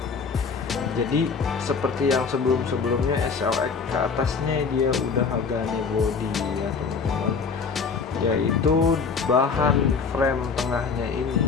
Jadi seperti yang sebelumnya SLX ke atasnya dia udah Hagane body ya teman-teman. Yaitu bahan frame tengahnya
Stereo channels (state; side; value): quieter; right; 5.2 dB